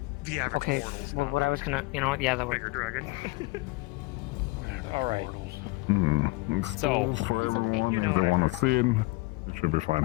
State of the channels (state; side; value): quieter; right; 23.7 dB